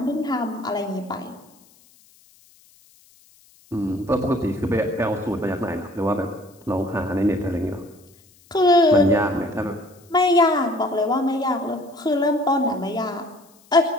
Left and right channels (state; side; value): noise; left; hiss, 29 dB below the sound